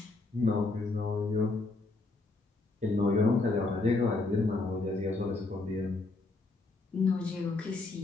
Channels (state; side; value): quieter; right; 3.3 dB